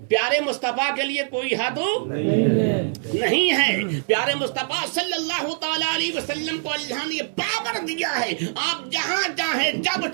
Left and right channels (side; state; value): left; silent; 63 dB below the other